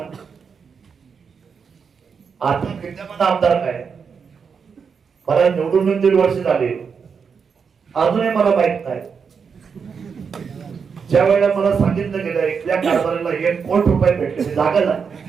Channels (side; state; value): left; quieter; 6.1 dB